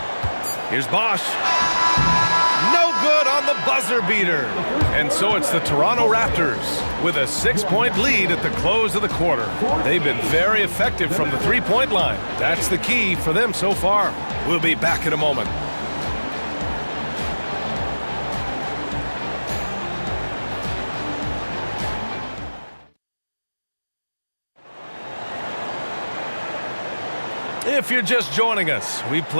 Here's Bosch. No good on the buzzer beater. And so it's the Toronto Raptors with a 6-point lead at the close of the quarter. They've been very effective from the three-point line. That's the key for them so far. We'll be back in a moment. If you're just joining us, we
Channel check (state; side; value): inverted; both; correlation -1.00